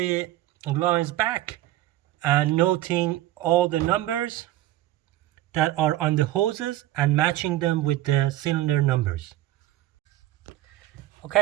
lines back and noting all the numbers that are on the hoses and matching them with the cylinder numbers.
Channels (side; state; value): left; quieter; 15.0 dB